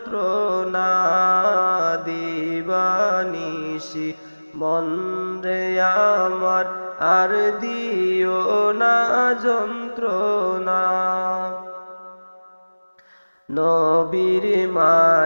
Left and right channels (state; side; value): inverted; both; correlation -1.00